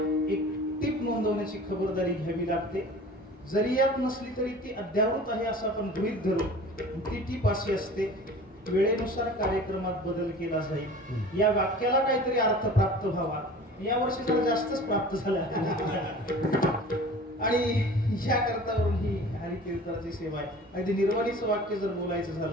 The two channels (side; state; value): both; normal; correlation 0.42